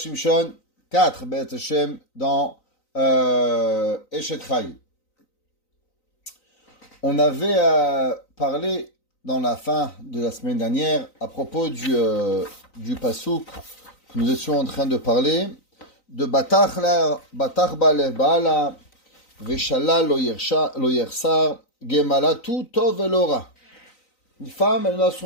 4 Beth Hashem dans Eshet Chai. On avait parlé dans la fin de la semaine dernière à propos du pasouk que nous étions en train de parler de Batach Balev Baala Veshala lo yersar Gemala tout tov elora. Une femme, elle n'a à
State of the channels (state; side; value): late; right; 3.9 ms